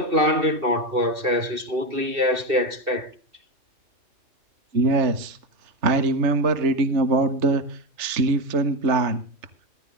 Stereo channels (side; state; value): left; late; 3.3 ms